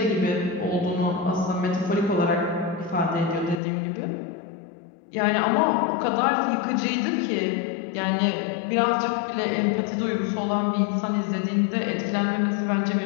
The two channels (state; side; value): drops out; right; at 3.6 s